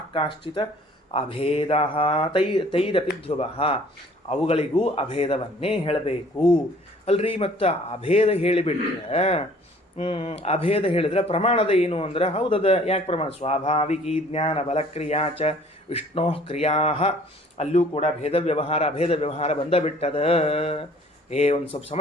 ಕಾಶ್ಚಿತ ಅಭೇದ ತೈರಪಿ ಧ್ರುವ. ಅವುಗಳಿಗೂ ಅಭೇದವನ್ನೇ ಹೇಳಬೇಕು ಅಲ್ರಿ. ಮತ್ತು ಅಭೇದ ಹೇಳಿಬಿಟ್ರೆ, ಅಭೇದ ಹೇಳಿದ್ರೆ ಪ್ರಮಾಣದ ಏನು ಅಂದ್ರೆ, ಹೌದದ. ಯಾಕೆ ಪ್ರಮಾಣ? ಸ್ವಾಭಾವಿಕಿ ಜ್ಞಾನ ಬಲಕ್ರಿಯಾಚ ವಿಷ್ಣೋ ಕ್ರಿಯಾ. ಅಲ್ಲೂ ಕೂಡ ಭೇದ ವ್ಯವಹಾರ ಅಭೇದ ವ್ಯವಹಾರ ಬಂದ ಬಿಟ್ಟದ. ಒಂದು ಸ್ವಲ್ಪ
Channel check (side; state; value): both; normal; correlation 0.54